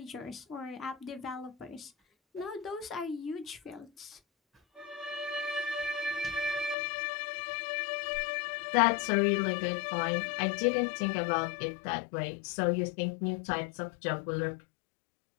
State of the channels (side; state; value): right; drops out; at 6.8 s